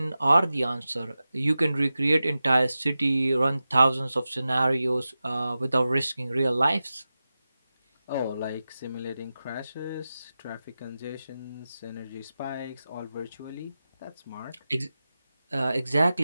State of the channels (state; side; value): inverted; both; correlation -0.94